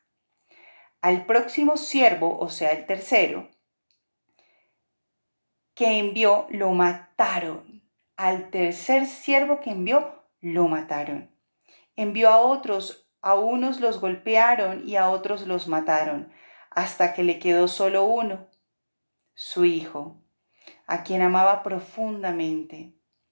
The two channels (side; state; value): both; inverted; correlation -1.00